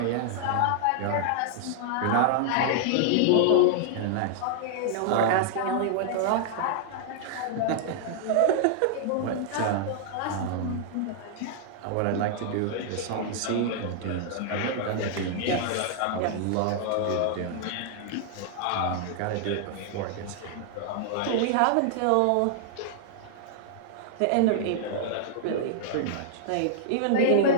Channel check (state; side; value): different; both; correlation -0.01